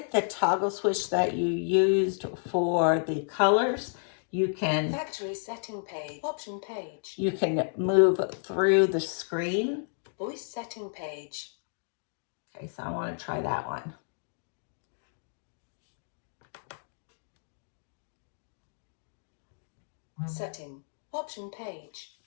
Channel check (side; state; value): right; silent; digital silence